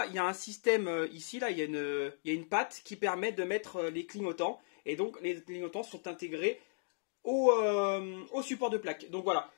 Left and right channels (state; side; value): silent; right; digital silence